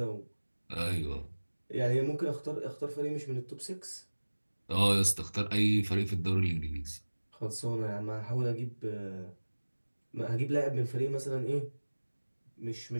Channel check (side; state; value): both; inverted; correlation -1.00